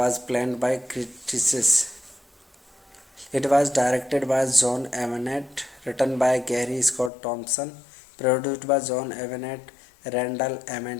planned by critics. It was directed by John Avnet, written by Gary Scott Thompson, produced by John Avnet, Randall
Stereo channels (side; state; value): right; drops out; at 7.1 s